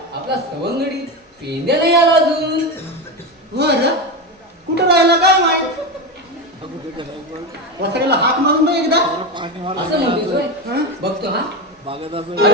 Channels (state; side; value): normal; both; correlation 0.17